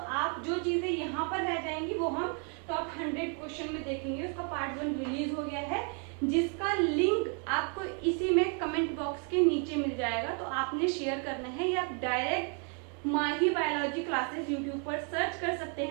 जो चीजें यहाँ पर रह जाएंगी वो हम टॉप 100 क्वेश्चन में देखेंगे। उसका पार्ट 1 रिलीज हो गया है, जिसका लिंक आपको इसी में कमेंट बॉक्स के नीचे मिल जाएगा। तो आपने शेयर करना है या आप डायरेक्ट माही बायोलॉजी क्लासेस यूट्यूब पर सर्च कर सकते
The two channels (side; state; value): left; quieter; 39.6 dB